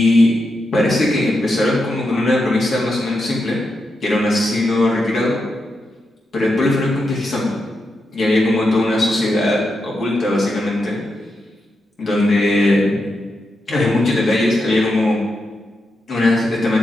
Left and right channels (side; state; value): both; normal; correlation 0.86